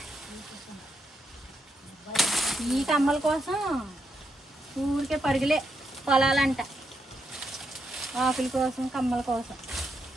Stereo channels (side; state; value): both; normal; correlation 0.81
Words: ఈ కమ్మల కోసం ఊరికే పరుగులే పొలాలంట, ఆకుల కోసం కమ్మల కోసం.